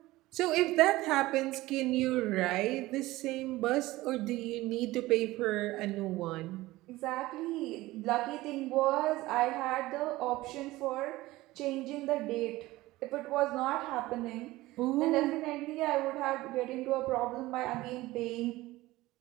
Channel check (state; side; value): quieter; left; 18.4 dB